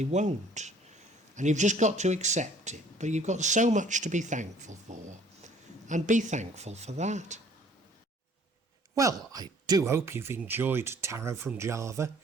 won't. And you've just got to accept it. But you've got so much to be thankful for. And be thankful for that. Well, I do hope you've enjoyed Tarot from Java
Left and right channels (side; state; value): both; normal; correlation 0.56